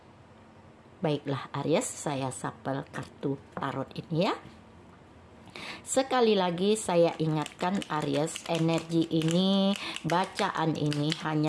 Baiklah Aries, saya sapel kartu tarot ini ya. Sekali lagi saya ingatkan Aries, energi ini, bacaan ini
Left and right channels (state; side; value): identical; both; correlation 1.00